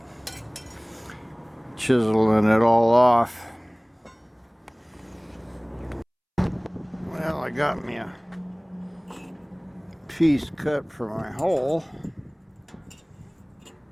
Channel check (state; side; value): identical; both; correlation 1.00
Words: chiseling it all off. Well, I got me a piece cut for my hole.